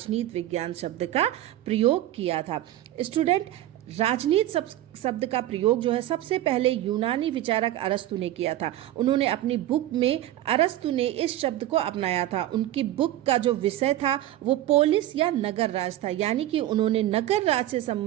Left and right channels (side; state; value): left; quieter; 13.8 dB